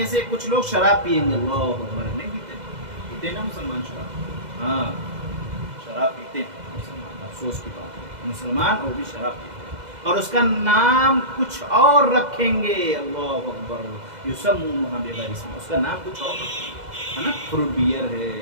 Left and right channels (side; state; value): left; late; 2.0 ms